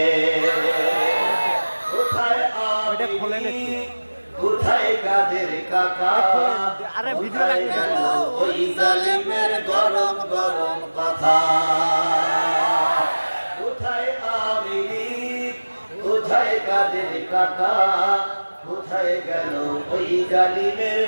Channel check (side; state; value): both; inverted; correlation -1.00